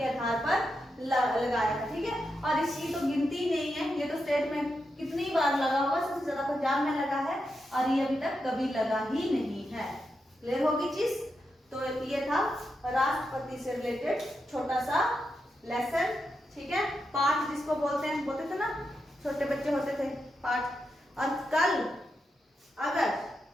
आधार पर लगाया था। ठीक है, और इसकी तो गिनती नहीं है, ये तो स्टेट में कितनी बार लगा होगा, सबसे ज्यादा पंजाब में लगा है और ये अभी तक कभी लगा ही नहीं है। क्लियर होगी चीज? तो ये था राष्ट्रपति से रिलेटेड छोटा सा लेसन। ठीक है, पाठ जिसको बोलते थे ना, छोटे बच्चे होते थे पाठ। और कल अगर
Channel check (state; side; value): normal; both; correlation 0.86